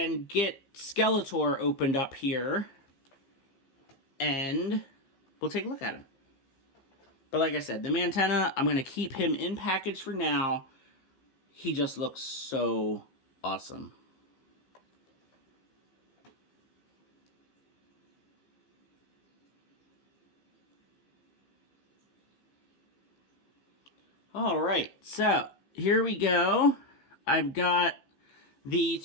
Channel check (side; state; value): right; late; 15 ms